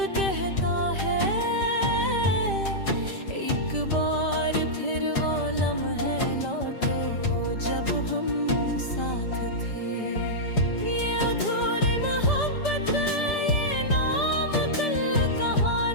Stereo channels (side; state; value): right; late; 5.1 ms